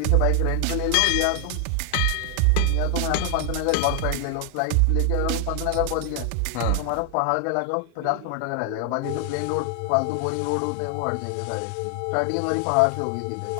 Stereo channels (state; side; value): different; both; correlation 0.00